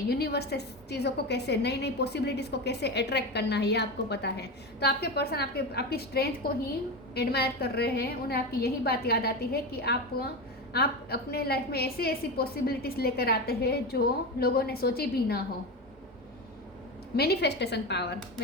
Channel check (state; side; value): normal; both; correlation 0.20